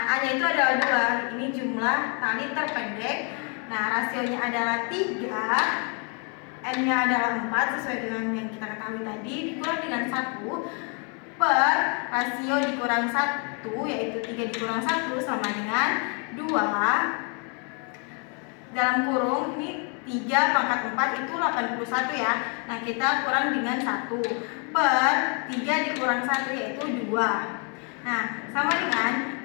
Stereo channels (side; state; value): right; quieter; 37.1 dB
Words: A-nya itu adalah 2. Ini jumlah tali terpendek. Nah, rasionya adalah 3. N-nya adalah 4 sesuai dengan yang kita ketahui tadi, dikurang dengan 1 per rasio dikurang 1 yaitu 3 dikurang 1 sama dengan 2 dalam kurung ini 3 pangkat 4 itu 81 ya. Nah, kita kurang dengan 1 per 3 dikurang 1 yaitu 2. Nah, sama dengan